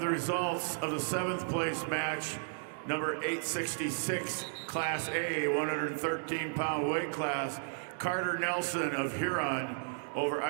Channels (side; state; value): left; silent; digital silence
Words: the results of the 7th place match, number 866, Class A, 113-pound weight class. Carter Nelson of Huron over